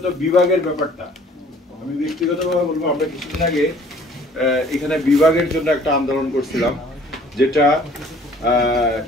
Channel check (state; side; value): normal; both; correlation 0.55